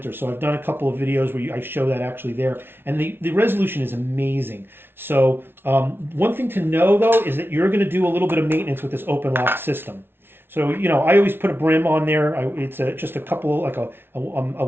So I've done a couple of videos where I show that actually there, and the resolution is amazing. So one thing to know though is that you're going to do a little bit of maintenance with this OpenLOCK system. So I always put a brim on there. It's just a couple, like a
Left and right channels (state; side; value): late; left; 0.11 ms